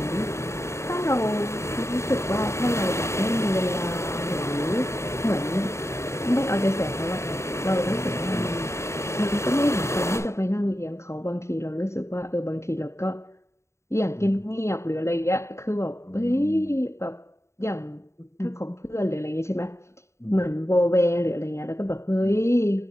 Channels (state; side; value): late; right; 0.14 ms